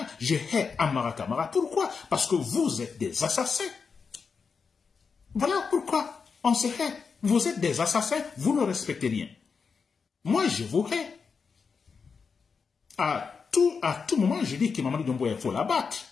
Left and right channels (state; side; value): quieter; right; 5.5 dB